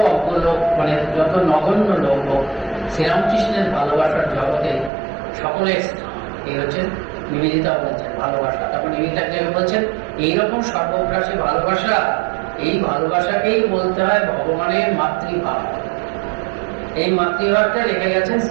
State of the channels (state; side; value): drops out; left; at 4.9 s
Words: অজ্ঞ লোক, মানে যত নগণ্য লোক হোক, শ্রীরামকৃষ্ণের ভালোবাসার জগতে সকলের স্থান। এই হচ্ছে নিবেদিতা বলছেন ভালোবাসা। তখন নিবেদিতা বলছেন এইরকম সর্বগ্রাসী ভালোবাসা, এই ভালোবাসাকেই বলতে হয় ভগবানের মাতৃভাব। এই মাতৃভাবটা রেখে গেছেন